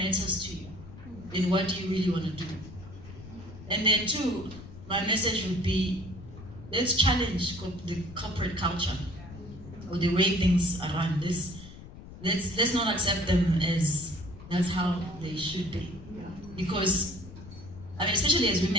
to you, and what do you really want to do. And then two, my message would be, let's challenge the corporate culture, or the way things are run. Let's not accept them as that's how they should be. Because, I mean, especially as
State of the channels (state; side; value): noise; left; rumble, 15 dB below the sound